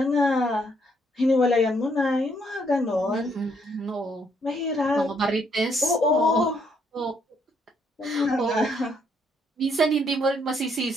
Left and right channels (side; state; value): both; normal; correlation 0.71